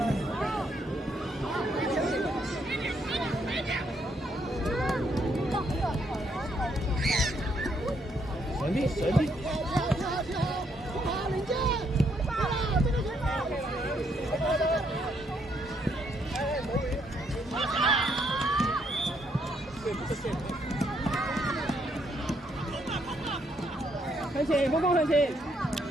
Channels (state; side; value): normal; both; correlation 0.73